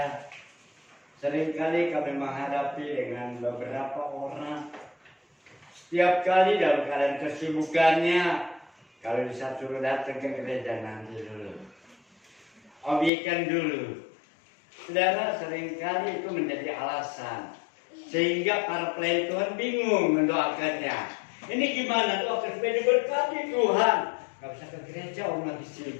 Seringkali kami menghadapi dengan beberapa orang. Setiap kali dalam keadaan kesibukannya, kalau bisa suruh datang ke gereja nanti dulu, obyekan dulu. Saudara, seringkali itu menjadi alasan sehingga para pelayan Tuhan bingung mendoakannya. Ini gimana doakan supaya diberkati Tuhan? Gak bisa ke gereja, orang lagi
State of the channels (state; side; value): drops out; right; at 13.1 s